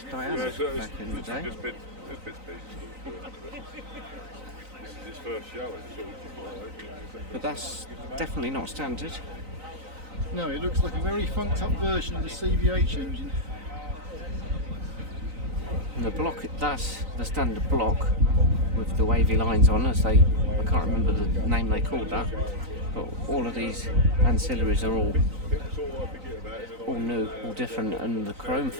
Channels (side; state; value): left; late; 3.9 ms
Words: Diana back in the day. This is its first show, But that's definitely not standard. No, it looks like a very funked up version of the CVH engine. And the block, that's the standard block with the wavy lines on, as they, I can't remember the name they called that. But all of these ancillaries are all new, all different, and the chrome